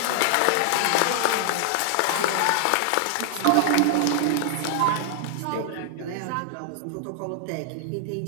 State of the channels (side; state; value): both; different; correlation 0.00